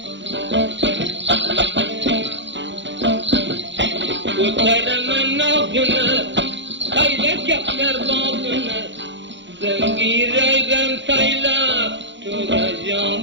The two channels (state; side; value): late; left; 0.53 ms